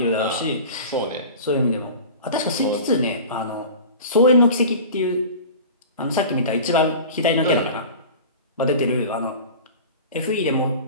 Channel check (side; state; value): both; inverted; correlation -0.37